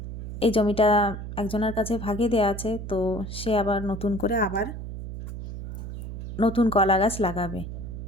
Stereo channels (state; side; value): noise; right; hum, 8 dB below the sound